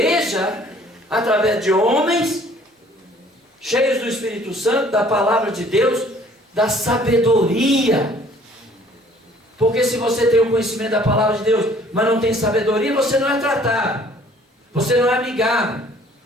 através de homens cheios do Espírito Santo, da palavra de Deus, da sabedoria. Porque se você tem o conhecimento da palavra de Deus, mas não tem sabedoria, você não é tratado, você não é amigável,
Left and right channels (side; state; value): both; normal; correlation 0.56